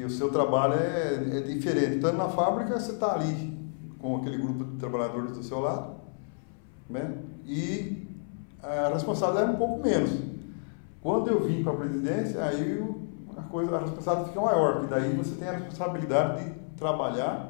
o seu trabalho é diferente. Estando na fábrica, você está ali com aquele grupo de trabalhadores do seu lado, né? E a responsabilidade é um pouco menos. Quando eu vim para a presidência, aí a responsabilidade fica maior, porque daí você tem a responsabilidade de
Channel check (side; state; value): right; silent; 58 dB below the other